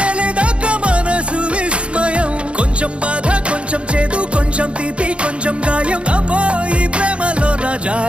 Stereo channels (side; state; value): left; late; 0.059 ms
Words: తెలియదాక మనసు విస్మయం కొంచెం బాధ కొంచెం చేదు కొంచెం తీపి కొంచెం గాయం అమ్మో ఈ ప్రేమలో నా